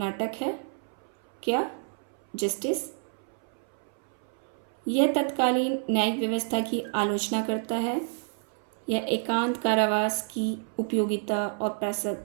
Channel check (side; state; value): left; silent; 59 dB below the other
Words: है, क्या? जस्टिस। यह तत्कालीन न्यायिक व्यवस्था की आलोचना करता है। यह एकांत कारावास की उपयोगिता और